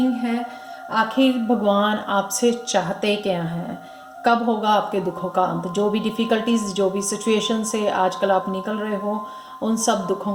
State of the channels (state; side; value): identical; both; correlation 1.00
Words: है आखिर भगवान आपसे चाहते क्या हैं, कब होगा आपके दुखों का अंत। जो भी डिफ़िकल्टीज़, जो भी सिचुएशन से आजकल आप निकल रहे हो, उन सब दुखों